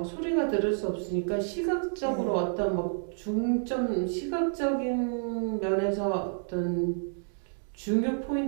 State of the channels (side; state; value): left; silent; digital silence